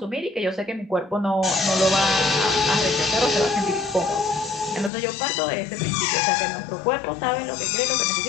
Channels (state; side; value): drops out; right; at 4.9 s